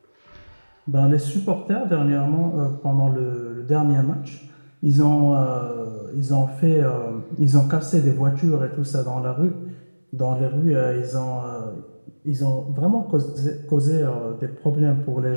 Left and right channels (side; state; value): both; inverted; correlation -1.00